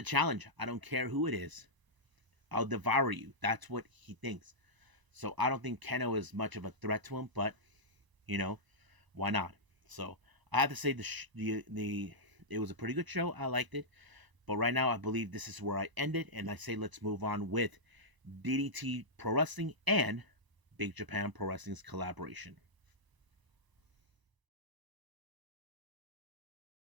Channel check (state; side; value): late; left; 1.0 ms